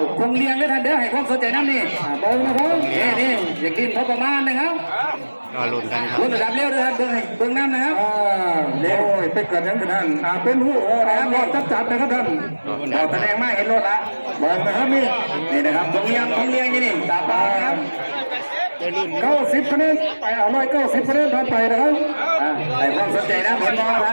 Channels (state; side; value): inverted; both; correlation -1.00